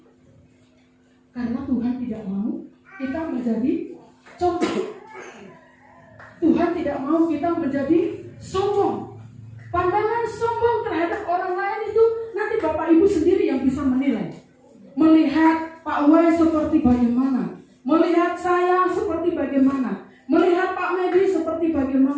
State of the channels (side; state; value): both; identical; correlation 1.00